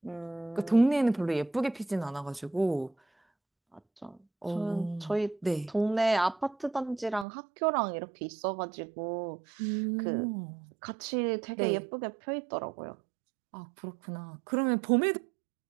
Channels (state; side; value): drops out; left; at 7.2 s